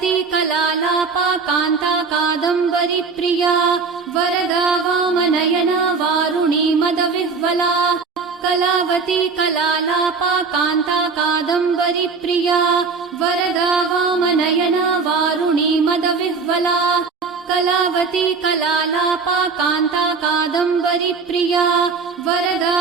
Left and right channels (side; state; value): left; quieter; 4.8 dB